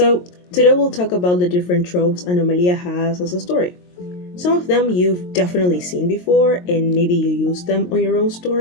today we'll talk about the different tropes Anomalía has as a story. Some of them you've definitely seen before and maybe you use them on your own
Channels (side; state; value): right; late; 22 ms